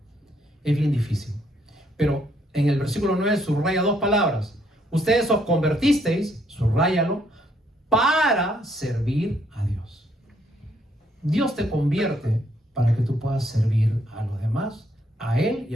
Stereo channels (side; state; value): both; normal; correlation 0.70